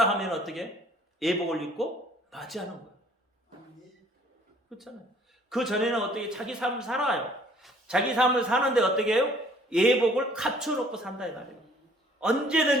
하면 어떻게? 예복을 입고 맞이하는 거예요. 그렇잖아요. 그 전에는 어떻게 자기 삶을 살아요. 자기 삶을 사는데 어떻게 해요? 예복을 갖춰놓고 산다 이 말이에요.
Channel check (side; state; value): both; normal; correlation 0.57